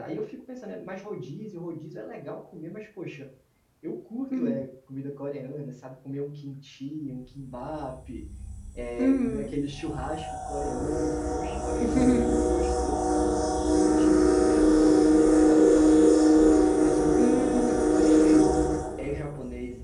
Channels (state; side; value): identical; both; correlation 1.00